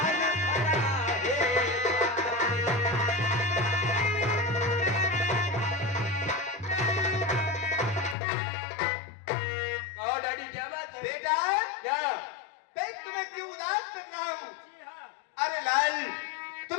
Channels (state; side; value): drops out; right; at 8.2 s